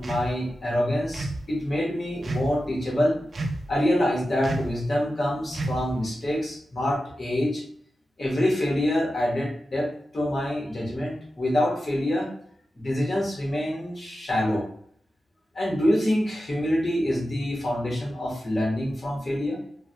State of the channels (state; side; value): normal; both; correlation 0.92